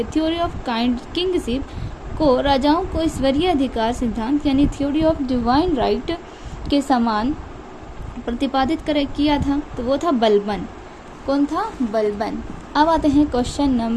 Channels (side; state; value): both; identical; correlation 1.00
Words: थ्योरी ऑफ किंगशिप को राजाओं को ईश्वरीय अधिकार सिद्धांत यानी थ्योरी ऑफ डिवाइन राइट के समान प्रतिपादित किया था? तो वो था बलबन। कौन था? बलबन। अब आते हैं क्वेश्चन